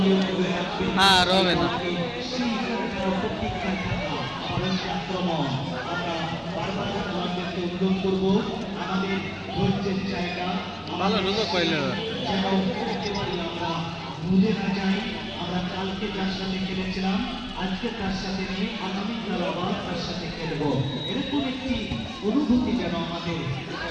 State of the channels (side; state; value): both; identical; correlation 1.00